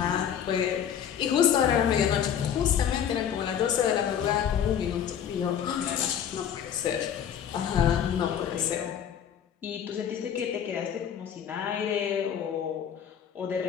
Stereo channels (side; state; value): right; quieter; 8.9 dB